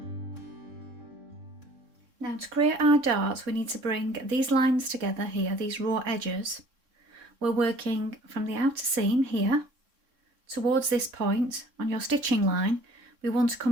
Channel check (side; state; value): left; late; 3.6 ms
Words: Now to create our darts, we need to bring these lines together here, these raw edges. We're working from the outer seam here towards this point on your stitching line. We want to